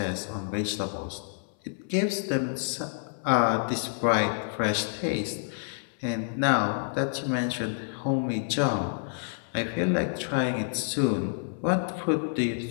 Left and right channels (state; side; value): silent; right; 59 dB below the other